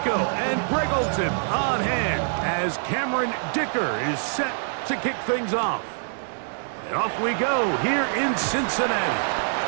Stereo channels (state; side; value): silent; left; 62 dB below the other